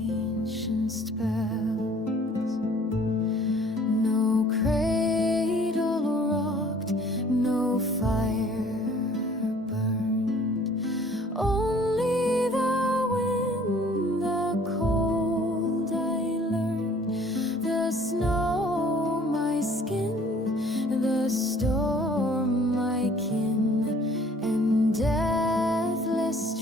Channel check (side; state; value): both; normal; correlation 0.55